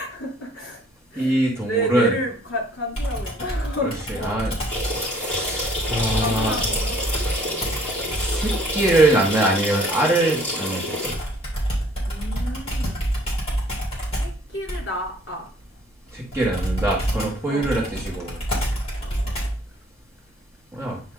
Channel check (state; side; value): normal; both; correlation 0.58